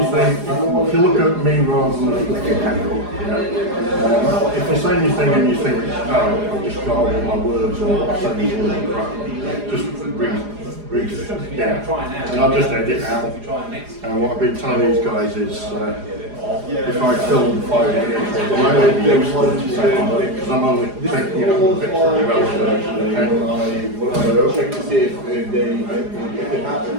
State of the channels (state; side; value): late; left; 4.9 ms